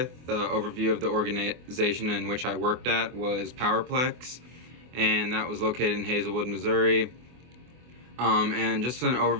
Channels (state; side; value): late; left; 24 ms